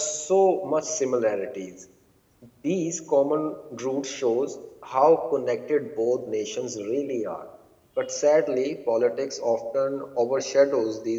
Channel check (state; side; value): identical; both; correlation 1.00